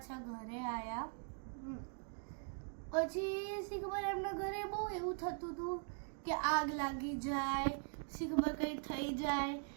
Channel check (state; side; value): silent; left; 50 dB below the other